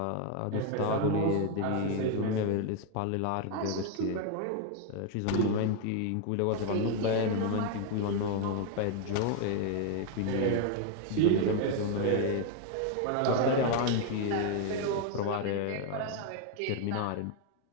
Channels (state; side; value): different; both; correlation 0.00